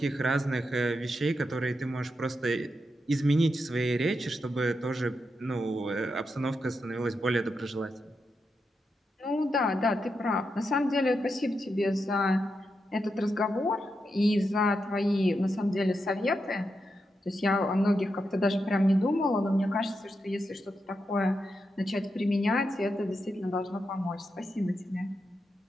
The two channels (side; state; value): both; normal; correlation 0.86